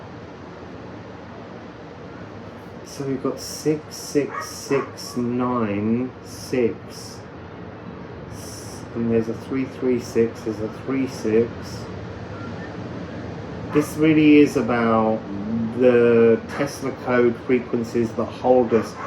So we've got 6, 6, 6, 9, 6. And there's a 3, 3, 6, there's a 3, 6. This really is about the Tesla code frequencies that hold us,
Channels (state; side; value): identical; both; correlation 1.00